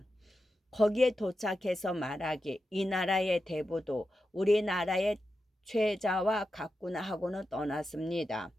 거기에 도착해서 말하기 이 나라의 대부도 우리나라의 최자와 같구나 하고는 떠났습니다.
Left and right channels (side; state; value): both; normal; correlation 0.90